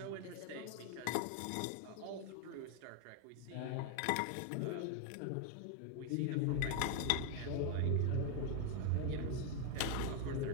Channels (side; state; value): both; different; correlation 0.01